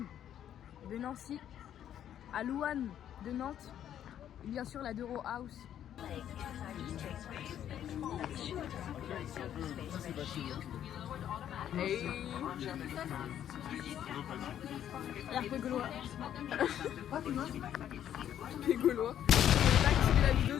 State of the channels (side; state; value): right; quieter; 10.4 dB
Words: de Nancy, à Louane de Nantes, et bien sûr la Dero House. Hey. L'air gaulois. Les Gaulois. J'ai pas activé la vidéo,